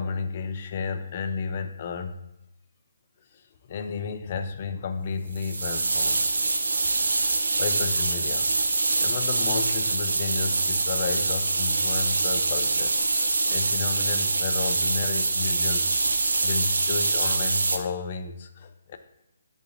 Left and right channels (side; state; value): both; inverted; correlation -0.85